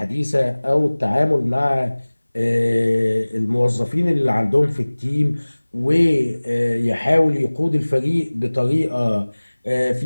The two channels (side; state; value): both; inverted; correlation -1.00